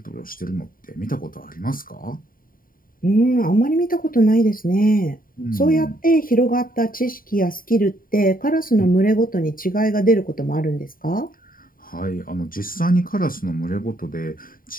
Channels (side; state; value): right; late; 0.41 ms